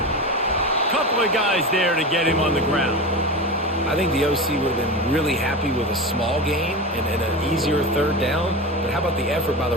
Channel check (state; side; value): normal; both; correlation 0.25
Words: Couple of guys there to get him on the ground. I think the OC would have been really happy with a small gain and an easier third down. But how about the effort by